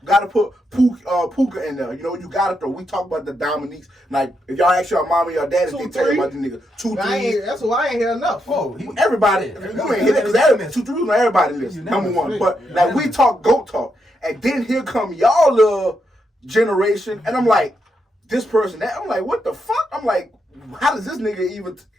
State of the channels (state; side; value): normal; both; correlation 0.81